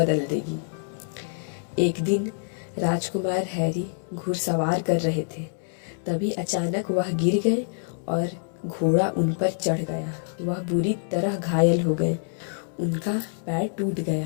देगी। एक दिन राजकुमार हैरी घुड़सवार कर रहे थे। तभी अचानक वह गिर गए और घोड़ा उन पर चढ़ गया। वह बुरी तरह घायल हो गए उनका पैर टूट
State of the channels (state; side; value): silent; right; digital silence